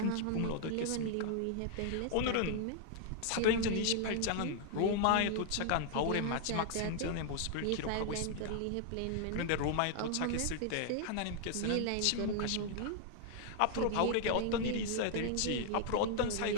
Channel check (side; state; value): both; different; correlation 0.00